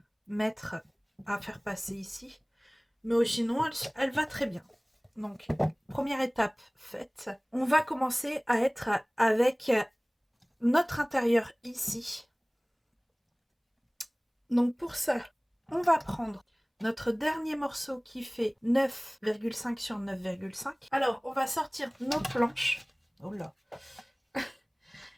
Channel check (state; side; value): identical; both; correlation 1.00